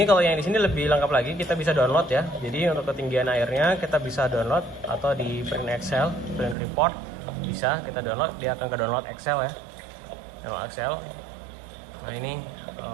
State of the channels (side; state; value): left; drops out; at 6.6 s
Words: kalau yang di sini lebih lengkap lagi, kita bisa download ya. Jadi untuk ketinggian airnya kita bisa download atau di print Excel, print report bisa kita download. Dia akan ke download Excel ya, download Excel. Nah ini